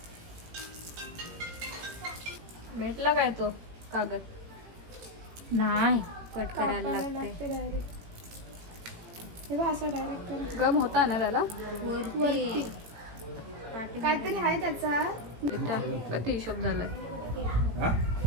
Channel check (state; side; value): late; left; 17 ms